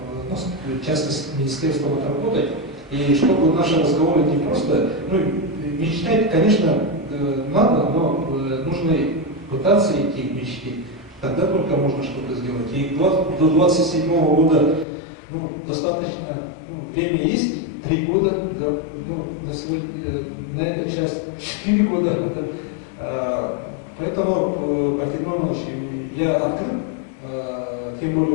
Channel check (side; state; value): right; drops out; at 14.9 s